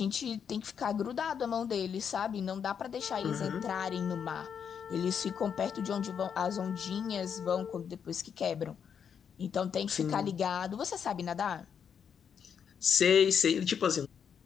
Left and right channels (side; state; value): right; quieter; 7.5 dB